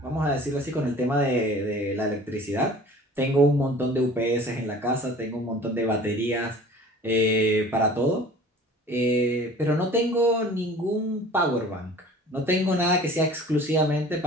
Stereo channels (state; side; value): normal; both; correlation 0.45